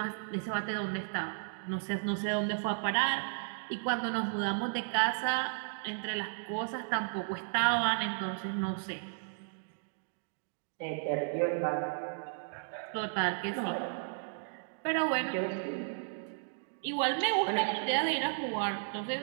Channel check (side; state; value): left; silent; digital silence